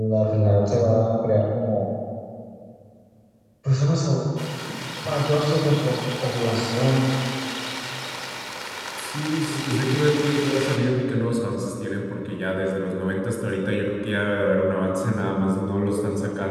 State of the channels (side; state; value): both; identical; correlation 1.00